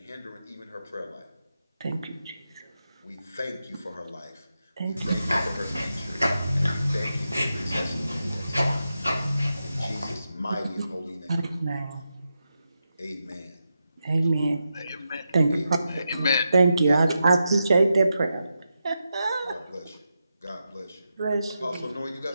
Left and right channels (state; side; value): inverted; both; correlation -0.88